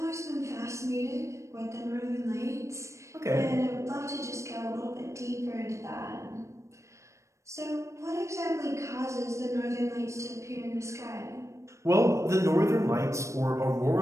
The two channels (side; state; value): left; late; 0.14 ms